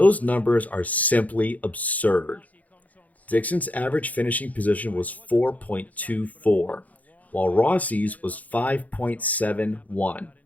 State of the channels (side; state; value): right; late; 0.075 ms